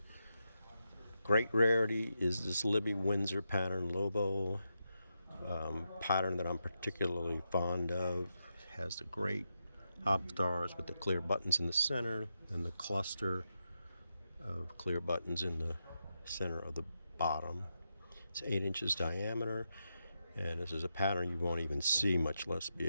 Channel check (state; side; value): inverted; both; correlation -0.86